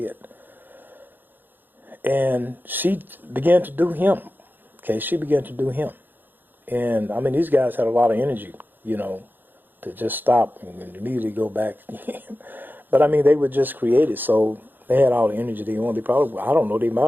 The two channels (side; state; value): left; late; 0.091 ms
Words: And she began to do him. Okay, she began to do him. And, I mean, these guys had a lot of energy, to just stop and immediately go back. But, I mean, they were just created, so they had all the energy they wanted. They probably, I don't know, they